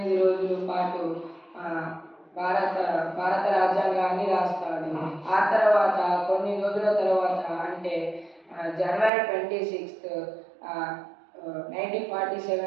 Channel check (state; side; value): drops out; left; at 9.1 s